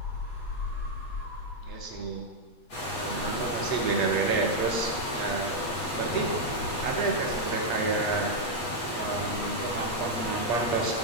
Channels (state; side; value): late; right; 8.3 ms